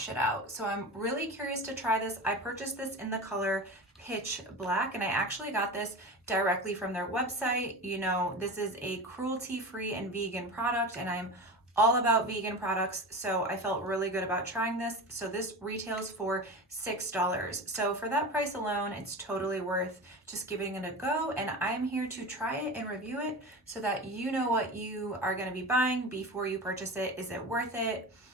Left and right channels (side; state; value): both; normal; correlation 0.28